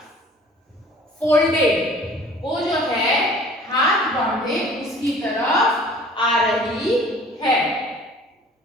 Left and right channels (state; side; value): normal; both; correlation 0.49